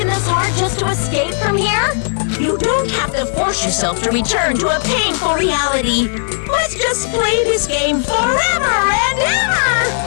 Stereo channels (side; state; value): right; silent; digital silence